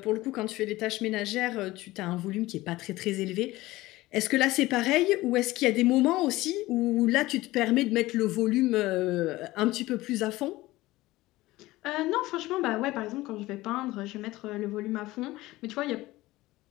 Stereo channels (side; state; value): right; quieter; 18.4 dB